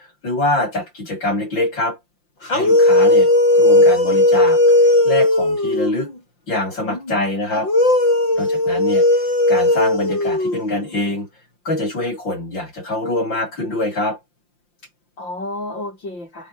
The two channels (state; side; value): late; right; 5.7 ms